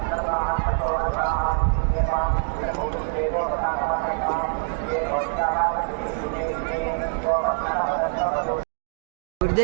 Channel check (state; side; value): silent; left; digital silence